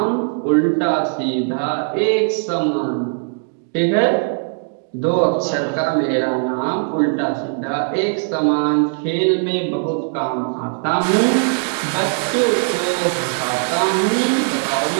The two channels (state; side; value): silent; left; 63 dB below the other